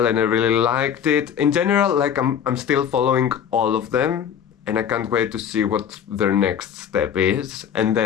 and I really liked it. In general, like I'm still following all of them and I can't wait to see what their next step is. And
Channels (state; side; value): quieter; right; 8.4 dB